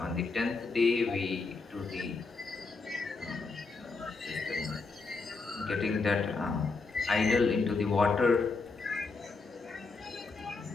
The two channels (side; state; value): right; quieter; 4.1 dB